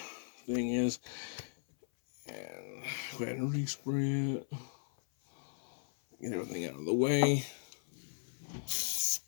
thing is. And go ahead and respray it. Get everything out of the way.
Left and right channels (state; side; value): silent; right; 53 dB below the other